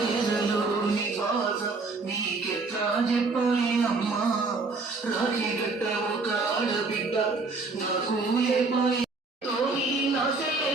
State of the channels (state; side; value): quieter; left; 3.8 dB